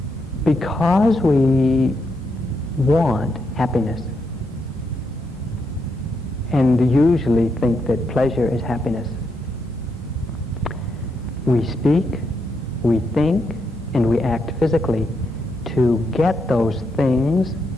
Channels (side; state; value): both; normal; correlation 0.81